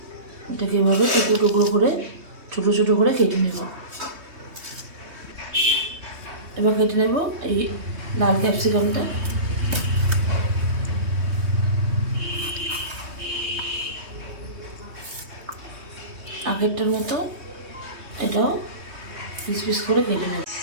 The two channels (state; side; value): late; left; 3.2 ms